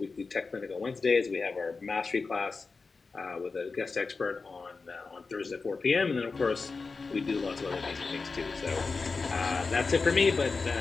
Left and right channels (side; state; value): right; quieter; 4.3 dB